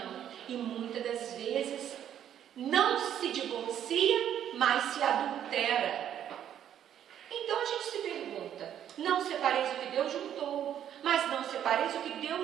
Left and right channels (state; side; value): quieter; left; 10.1 dB